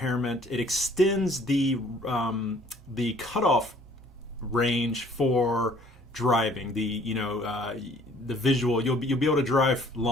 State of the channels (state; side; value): normal; both; correlation 0.57